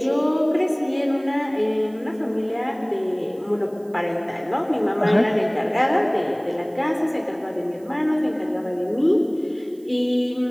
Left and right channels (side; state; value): right; noise; hiss, 30 dB below the sound